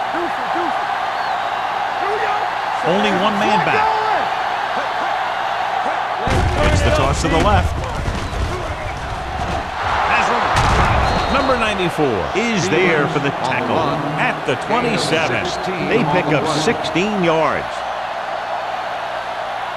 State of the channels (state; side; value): identical; both; correlation 1.00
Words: Only one man back. It's the toss to the left. Number 94 is there for the tackle at the 27. They pick up 16 yards.